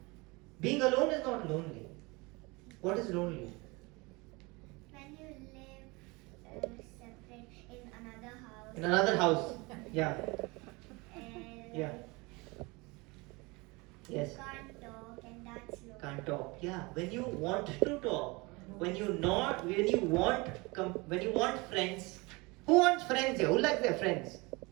Being alone is not lonely. What is lonely? When you live separate in another house. In another house. Yeah. And Yeah. Yes. you can't talk, and that's lonely. Can't talk. Yeah. When you want to talk, when you want friends. Who wants friends here? Who likes their friends?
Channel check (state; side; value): quieter; left; 25.5 dB